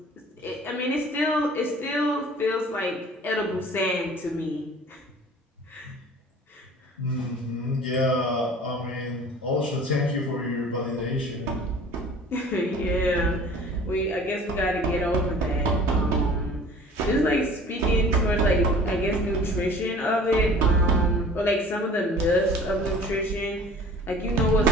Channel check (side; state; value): both; normal; correlation 0.46